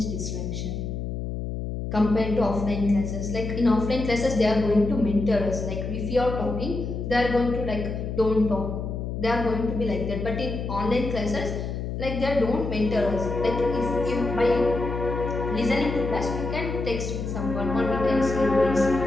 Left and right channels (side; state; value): left; noise; hum, 4 dB below the sound